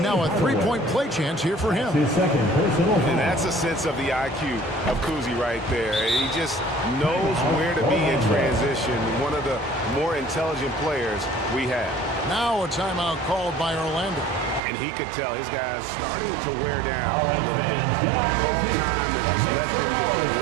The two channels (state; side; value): drops out; left; at 14.6 s